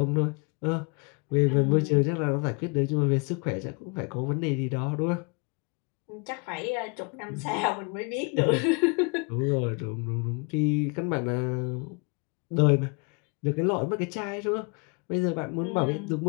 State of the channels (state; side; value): quieter; right; 33.3 dB